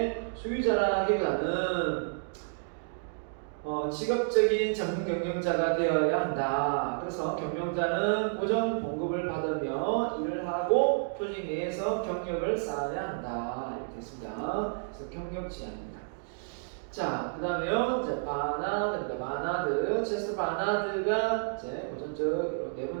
소유자라기보다는 직업적인 전문 경영자가 되어야 한다. 그래서 경영자는 고정 봉급을 받으며 일을 하고 조직 내에서 경력을 쌓아야 한다. 이렇게 됐습니다. 그래서 경력 지향입니다. 자, 그 다음에요. 이제 바나드, 체스터 바나드가 이제 고전적 네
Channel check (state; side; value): silent; left; digital silence